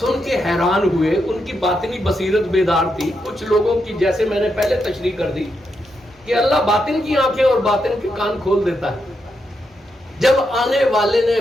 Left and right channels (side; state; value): both; normal; correlation 0.83